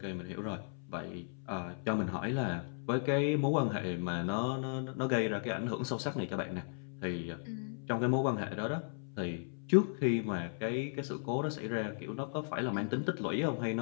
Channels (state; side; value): silent; right; 54 dB below the other